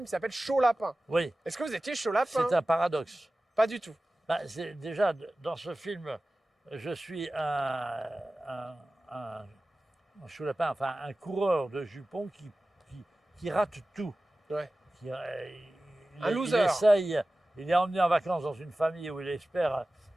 qui s'appelle Chaud Lapin. Oui, Est-ce que vous étiez chaud lapin? c'est un paradoxe. Pas du tout. Bah, déjà, dans ce film, je suis un choulapin, enfin un coureur de jupons qui rate tout. Ouais. Un loser. Il est emmené en vacances dans une famille où il espère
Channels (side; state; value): both; normal; correlation 0.96